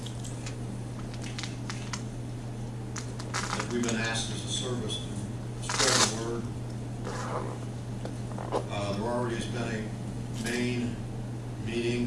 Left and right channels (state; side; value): identical; both; correlation 1.00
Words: But we've been asked as a service to spread the word. There already has been a main